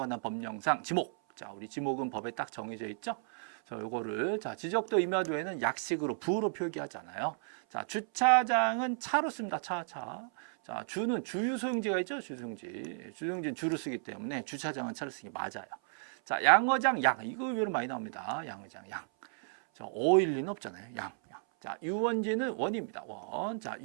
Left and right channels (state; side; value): silent; left; 55 dB below the other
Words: 법령상 지목. 자, 우리 지목은 법에 딱 정해져 있죠. 요거를 지적도 임야도에는 약식으로 부로 표기하잖아요. 자, 주차장은 차로 씁니다. 차. 자, 주는 주유소용지가 있죠. 주유소용지는 주로 쓰기 때문에 주차장은 차로 쓰기 맞아요. 자, 양어장 양 이거 의외로 많이 나옵니다. 양어장 양. 자, 어일 리는 없잖아요. 양. 자, 유원지는 원입니다. 원. 자,